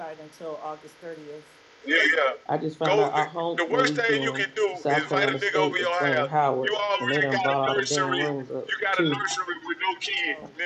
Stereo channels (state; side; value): identical; both; correlation 1.00